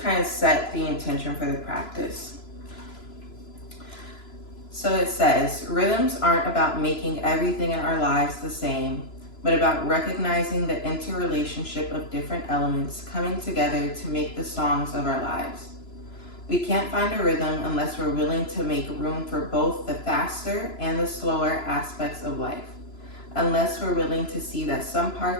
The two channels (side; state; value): right; late; 3.0 ms